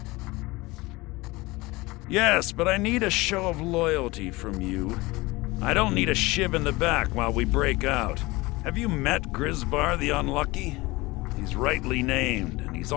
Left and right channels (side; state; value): right; quieter; 21.7 dB